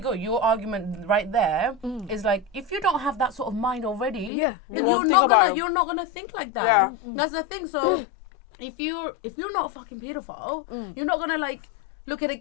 Your argument right there is like, if you don't have that sort of mind already, then You you're won't not think gonna about it. you're not gonna think like that. Yeah. That's the thing. So if you're not a fucking pedophile, you're not gonna like look at a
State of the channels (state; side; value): drops out; right; at 4.3 s